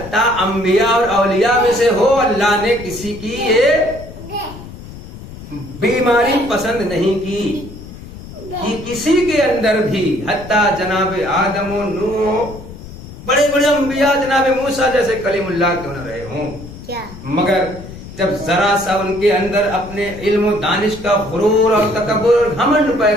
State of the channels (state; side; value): noise; left; rumble, 14 dB below the sound